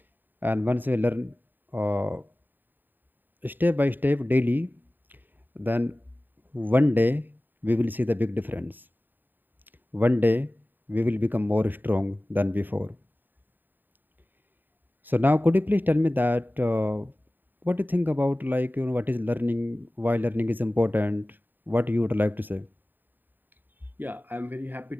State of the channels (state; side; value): late; left; 0.091 ms